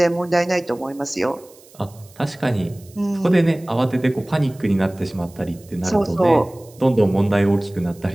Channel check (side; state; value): right; noise; hiss, 26 dB below the sound